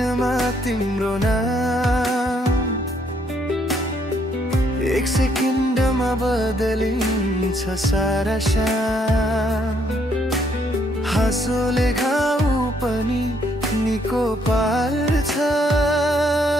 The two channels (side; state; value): both; normal; correlation 0.70